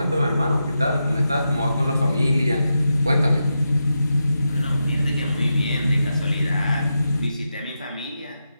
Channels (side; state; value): both; inverted; correlation -0.87